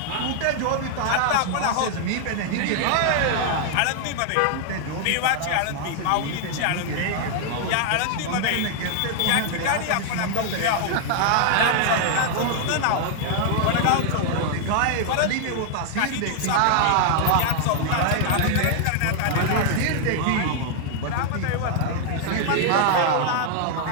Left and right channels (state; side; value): different; both; correlation 0.00